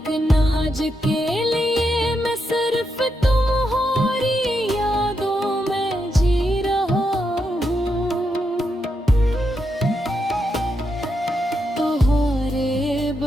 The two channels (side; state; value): both; normal; correlation 0.83